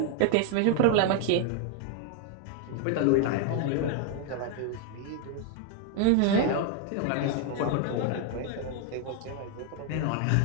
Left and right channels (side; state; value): both; different; correlation 0.00